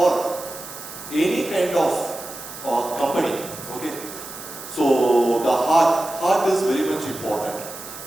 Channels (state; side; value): noise; right; hiss, 12 dB below the sound